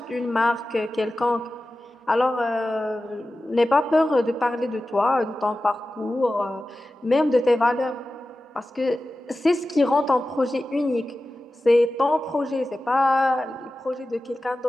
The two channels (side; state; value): both; normal; correlation 0.94